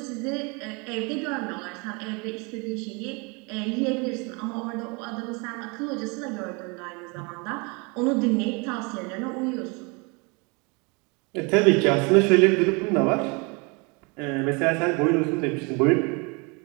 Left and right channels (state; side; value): quieter; left; 30.2 dB